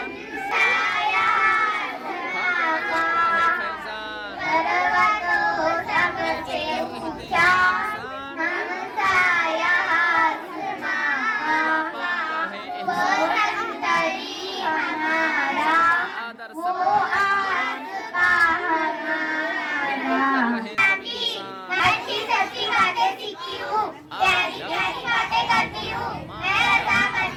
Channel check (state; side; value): identical; both; correlation 1.00